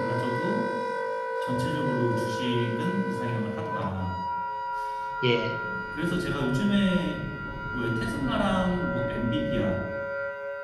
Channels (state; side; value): identical; both; correlation 1.00